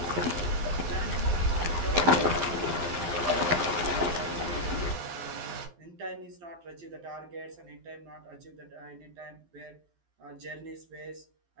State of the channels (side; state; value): left; late; 12 ms